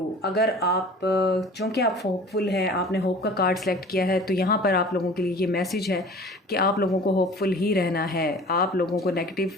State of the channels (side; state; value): both; normal; correlation 0.44